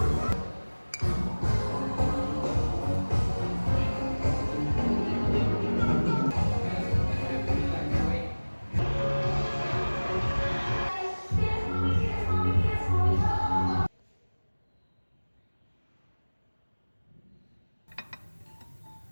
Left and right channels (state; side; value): inverted; both; correlation -1.00